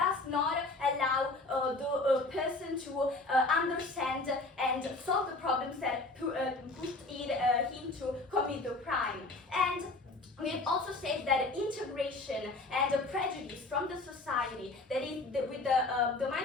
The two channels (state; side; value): quieter; right; 3.1 dB